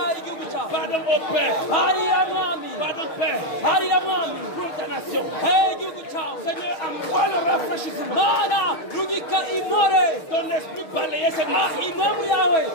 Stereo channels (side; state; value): right; late; 6.5 ms